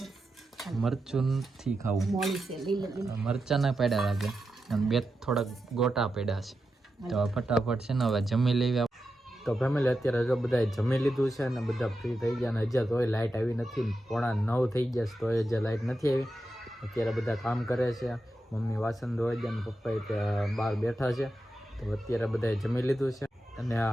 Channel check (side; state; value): both; normal; correlation 0.89